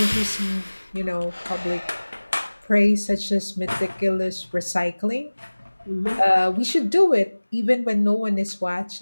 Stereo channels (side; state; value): both; inverted; correlation -1.00